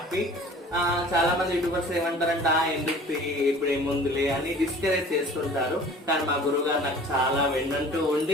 చాలా మంది యూట్యూబర్స్ ఏమంటారంట ఎందుకు ఇప్పుడు ఏముందిలే అని డిస్కరేజ్ చేస్తుంటారు. కానీ మా గురువు గారు నాకు చాలా వెన్నంటూ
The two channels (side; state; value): both; normal; correlation 0.46